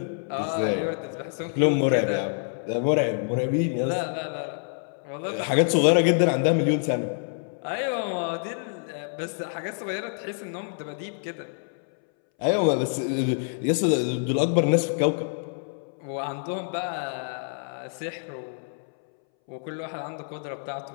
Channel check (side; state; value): right; silent; 60 dB below the other